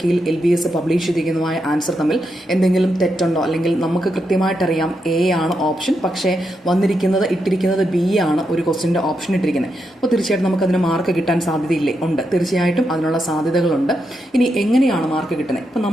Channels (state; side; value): normal; both; correlation 0.83